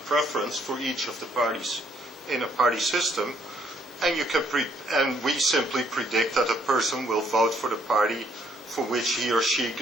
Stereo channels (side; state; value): both; normal; correlation 0.69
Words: for each of the parties in a party system, and you can and we simply predict that a person will vote for the party for which he or she